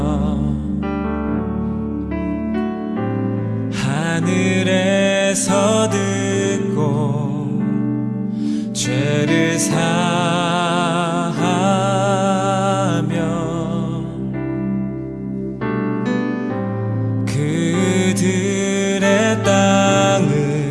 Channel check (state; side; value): identical; both; correlation 1.00